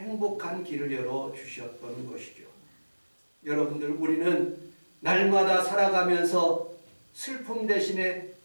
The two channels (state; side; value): inverted; both; correlation -1.00